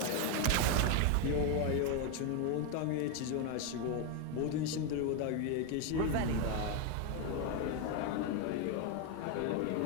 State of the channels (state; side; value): different; both; correlation 0.01